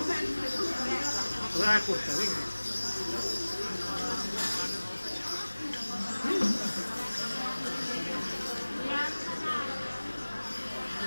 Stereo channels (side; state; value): both; inverted; correlation -1.00